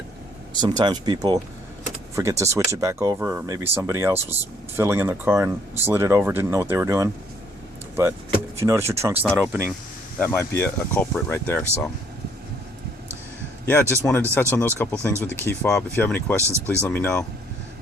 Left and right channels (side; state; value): both; normal; correlation 0.65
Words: Sometimes people forget to switch it back over, or maybe somebody else was filling in their car and slid it over, didn't know what they were doing. But if you notice your trunk's not opening, that might be a culprit right there. So yeah, just wanted to touch on those couple things with the key fob. If you have any questions, please let me know.